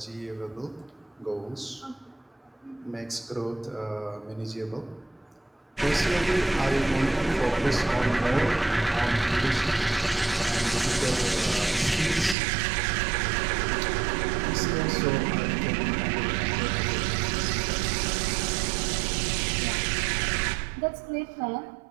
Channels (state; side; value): drops out; left; at 12.4 s